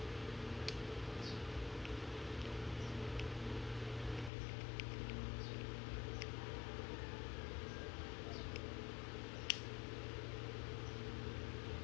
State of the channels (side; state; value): right; drops out; at 4.3 s